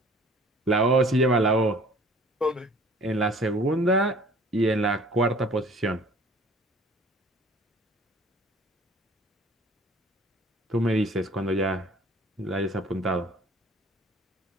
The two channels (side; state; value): both; normal; correlation 0.50